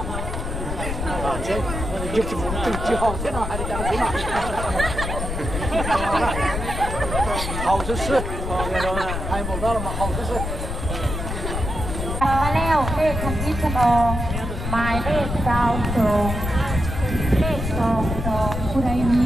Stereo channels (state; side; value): noise; left; rumble, 4 dB below the sound